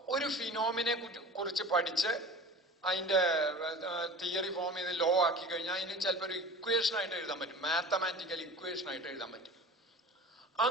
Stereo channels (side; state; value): both; normal; correlation 0.38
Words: ഒരു ഫിനോമിനെ കുറിച്ച് പഠിച്ച് അതിന്റെ തിയറി ഫോം ചെയ്ത് ലോ ആക്കി കഴിഞ്ഞാൽ അതിന് ചിലപ്പോൾ ഒരു ഇക്വേഷൻ ആയിട്ട് എഴുതാൻ പറ്റും, മാത്തമാറ്റിക്കൽ ഇക്വേഷൻ ആയിട്ട് എഴുതാൻ പറ്റും.